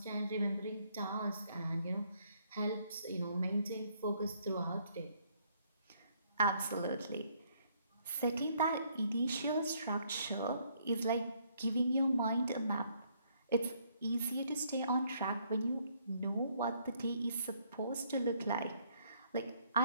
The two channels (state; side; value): inverted; both; correlation -0.68